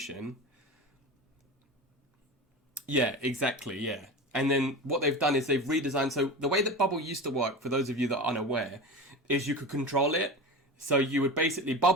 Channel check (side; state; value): both; normal; correlation 0.29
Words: Yeah, exactly, yeah. And then what they've done is they've redesigned, so the way that bubble used to work, for those of you that are unaware, is you could control it. So you would basically